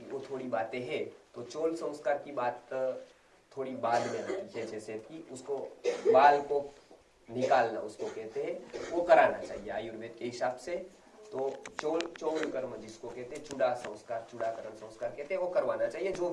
वो थोड़ी बातें हैं, तो चोल संस्कार की बात थोड़ी बाद में आती है। जैसे कि उसको बाल को निकालना उसको कहते हैं, वो कराना चाहिए आयुर्वेद के हिसाब से। तो चोल कर्म जिसको कहते हैं, चूड़ा संस्कार, चूड़ाकरण संस्कार कहते हैं, वो करवाना चाहिए। जो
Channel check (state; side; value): identical; both; correlation 1.00